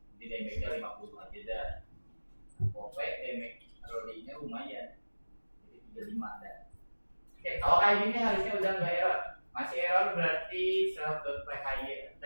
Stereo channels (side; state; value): both; inverted; correlation -1.00